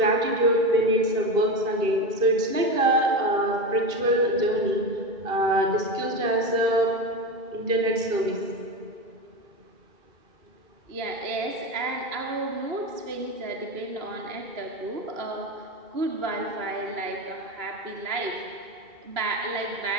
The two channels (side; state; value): left; late; 2.7 ms